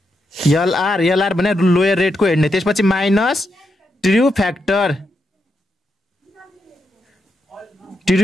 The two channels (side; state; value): both; normal; correlation 0.83